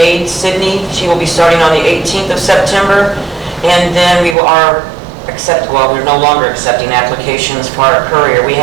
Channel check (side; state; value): left; drops out; at 4.4 s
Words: Sydney. She will be starting on the 18th of September. And then we're no longer accepting applications for our courier. We